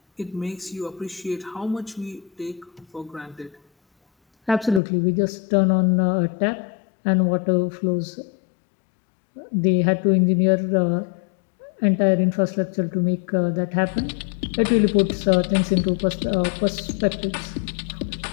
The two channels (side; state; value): right; drops out; at 4.8 s